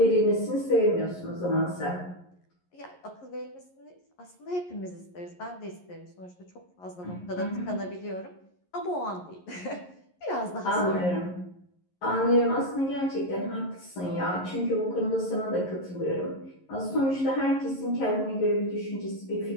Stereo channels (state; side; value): late; right; 11 ms